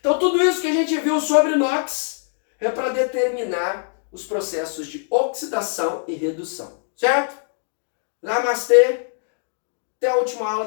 tudo isso que a gente viu sobre o NOx é para determinar os processos de oxidação e redução, certo? Namastê! Até a última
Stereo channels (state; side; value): silent; right; digital silence